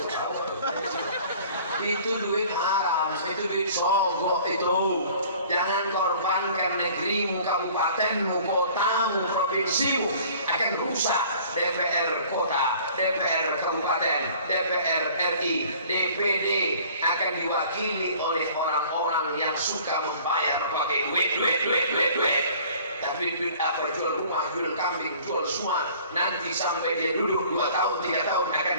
Itu duit haram, itu duit sogok itu. Jangan korbankan negerimu, kabupatenmu, kotamu, provinsimu akan rusak. DPR kota, DPR kabupaten, DPR RI, DPD akan diwakili oleh orang-orang yang suka membayar pakai duit. Tapi duit apa? Jual rumah, jual kambing, jual semua. Nanti sampai dia duduk 2 tahun, 3 tahun akan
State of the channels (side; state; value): both; inverted; correlation -0.51